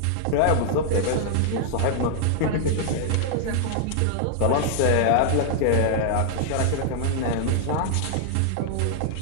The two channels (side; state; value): both; different; correlation -0.01